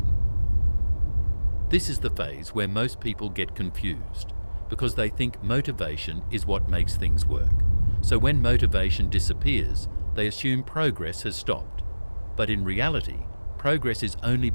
This is the phase where most people get confused, because they think motivation is what makes things work. So when motivation disappears, they assume progress has stopped. But in reality, progress is only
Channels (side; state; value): both; inverted; correlation -1.00